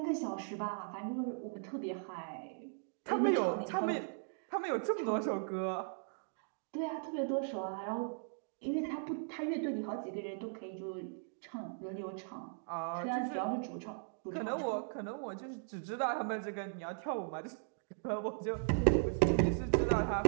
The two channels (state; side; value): silent; left; digital silence